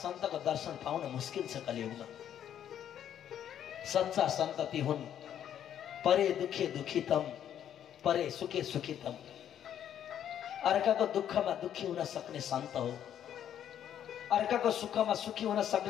दर्शन पाउन मुस्किल छ कलियुगमा। सच्चा सन्त ती हुन् परे दुखे दुखितम, परे सुखे सुखितम। अर्काको दुःखमा दुखी हुन सक्ने सन्त हो। अर्काको सुखमा सुखी हुन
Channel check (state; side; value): quieter; right; 10.0 dB